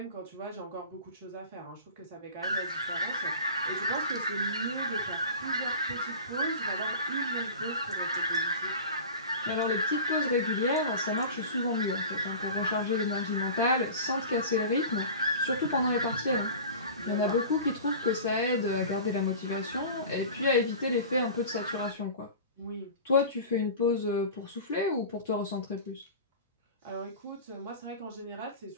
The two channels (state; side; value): inverted; both; correlation -0.36